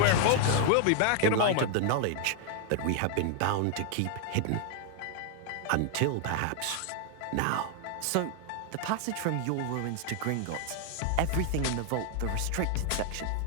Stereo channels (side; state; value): both; different; correlation 0.00